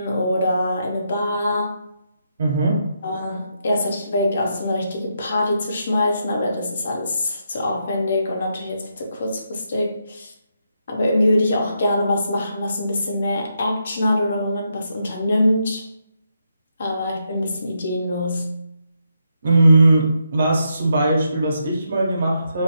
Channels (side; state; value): both; inverted; correlation -0.81